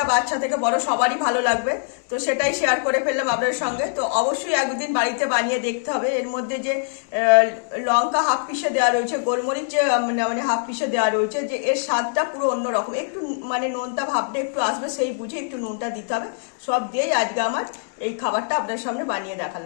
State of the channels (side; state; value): right; silent; digital silence